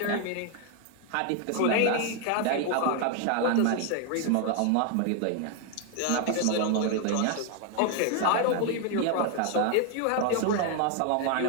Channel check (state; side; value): different; both; correlation 0.01